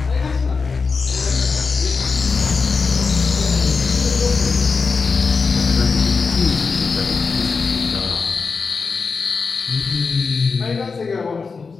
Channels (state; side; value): quieter; right; 4.8 dB